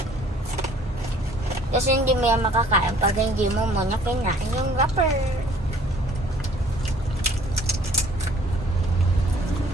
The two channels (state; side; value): normal; both; correlation 0.56